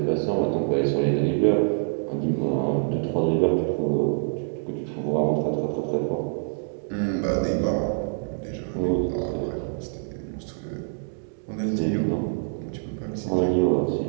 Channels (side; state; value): left; silent; digital silence